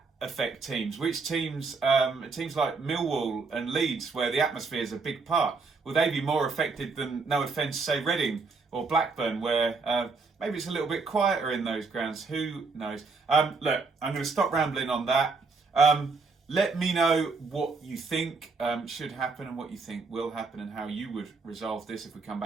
affect teams? Which teams, teams like Millwall and Leeds, where the atmosphere is a big part, will they be more affected than, no offence, say Reading or Blackburn, where maybe it's a little bit quieter in those grounds? Who knows? Look, I'm going to stop rambling on that. Let me know what you think should happen and what you think will happen and how you would resolve this if we come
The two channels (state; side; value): quieter; left; 4.4 dB